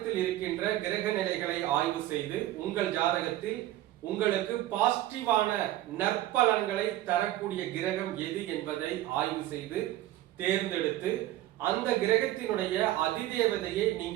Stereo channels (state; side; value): quieter; left; 14.6 dB